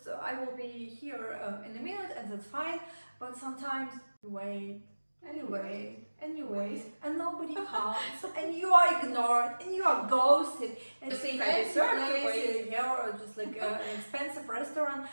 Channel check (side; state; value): both; inverted; correlation -1.00